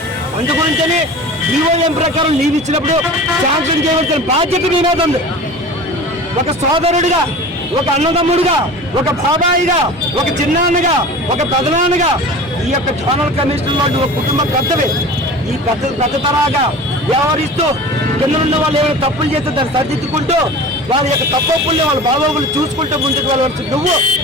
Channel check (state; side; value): normal; both; correlation 0.37